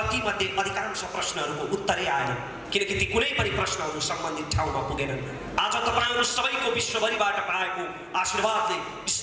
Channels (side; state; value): both; identical; correlation 1.00